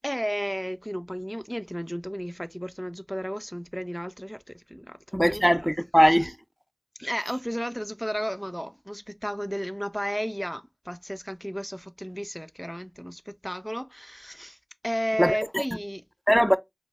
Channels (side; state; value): both; identical; correlation 1.00